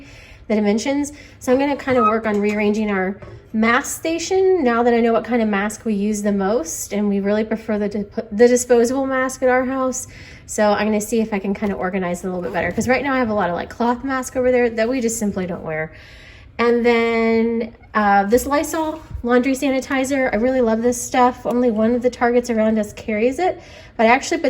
the dimensions. So I'm going to kind of work on rearranging our mask station now that I know what kind of mask we use the most, and we really prefer the disposable mask at our house. So I'm going to see if I can kind of organize it a little bit better, because right now I have a lot of like cloth mask over there that we just simply don't wear. And then this Lysol laundry sanitizer, I really love this stuff. Only one of the Targets around us carries it, but I actually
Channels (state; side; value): identical; both; correlation 1.00